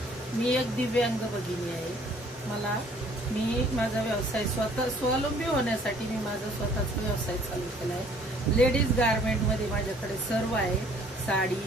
मी एक दिव्यांग भगिनी आहे. मी माझा व्यवसाय स्वावलंबी होण्यासाठी मी माझा स्वतःचा व्यवसाय चालू केला आहे. लेडीज गारमेंटमध्ये माझ्याकडे सर्व आहे. साडी,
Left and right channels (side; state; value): both; normal; correlation 0.58